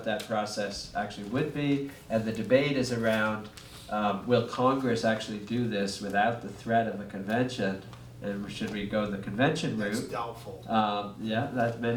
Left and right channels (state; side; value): identical; both; correlation 1.00